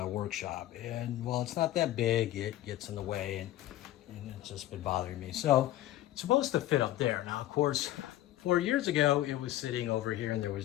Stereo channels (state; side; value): quieter; right; 14.2 dB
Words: workshop. And while it's not that big, it gets in the way and it's just been bothering me. So it's supposed to fit up there. Now, of course, 4 years ago, it was sitting over here and there